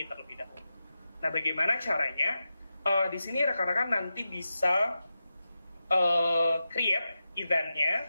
terlebih dahulu. Nah, bagaimana caranya? Di sini rekan-rekan nanti bisa create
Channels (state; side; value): inverted; both; correlation -0.91